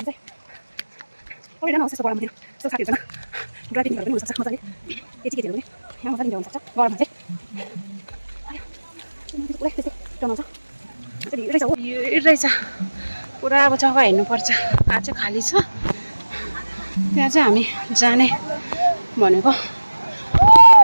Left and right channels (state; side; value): inverted; both; correlation -1.00